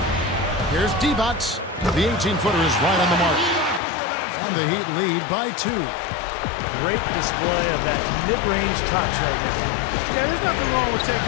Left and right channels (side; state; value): right; drops out; at 3.8 s